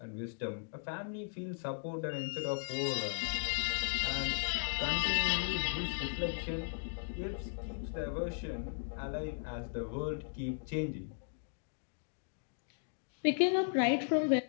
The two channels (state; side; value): silent; right; digital silence